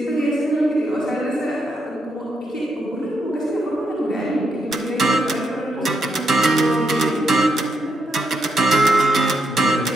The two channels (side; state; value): both; normal; correlation 0.80